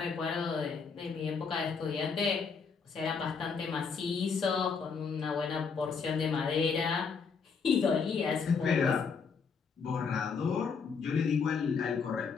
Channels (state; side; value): quieter; right; 5.6 dB